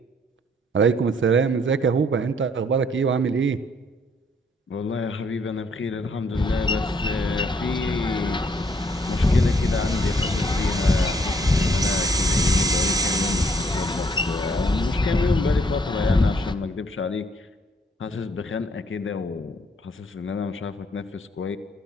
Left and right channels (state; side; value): normal; both; correlation 0.66